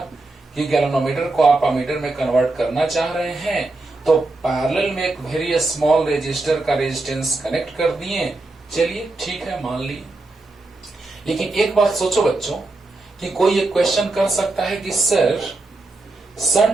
कि गैल्वेनोमीटर को आप अमीटर में कन्वर्ट करना चाह रहे हैं, तो पैरेलल में एक वेरी स्मॉल रेजिस्टर का रेजिस्टेंस कनेक्ट कर दिए। चलिए ठीक है, मान लिए। लेकिन एक बात सोचो बच्चों कि कोई एक क्वेश्चन कर सकता है कि सर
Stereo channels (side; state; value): left; quieter; 3.1 dB